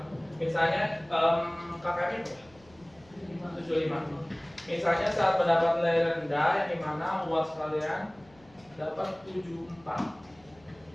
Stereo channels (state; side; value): noise; left; hum, 28 dB below the sound